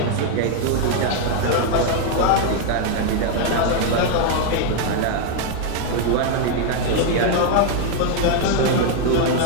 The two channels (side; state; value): both; different; correlation 0.00